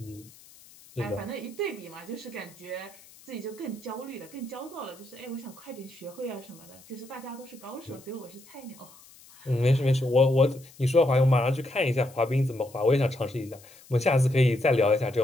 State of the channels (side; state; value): left; noise; hiss, 23 dB below the sound